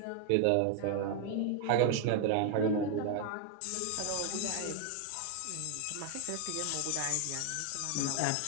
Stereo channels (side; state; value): both; different; correlation 0.00